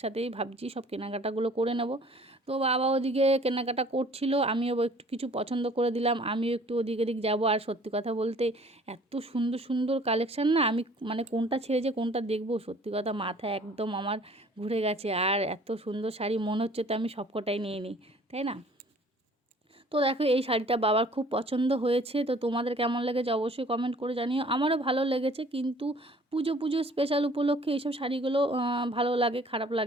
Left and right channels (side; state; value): both; normal; correlation 0.53